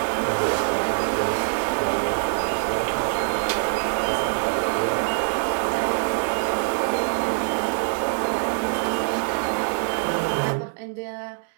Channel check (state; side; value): silent; left; digital silence